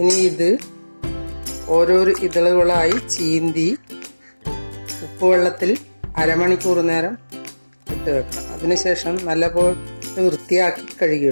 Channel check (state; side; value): inverted; both; correlation -1.00